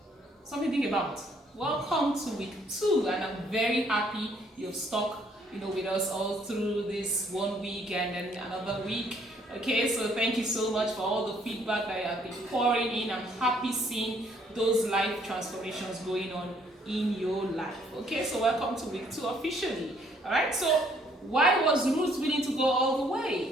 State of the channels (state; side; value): normal; both; correlation 0.65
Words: Something to think about. Welcome to week 2, and I'm very happy you've stuck with us all through this 1 week and then another week. Okay, so thank you so much for all the feedback that you have been pouring in. I'm happy seeing those life transformations going on in your life. Okay, so welcome to week 2 officially. All right, so why was Ruth willing to go all the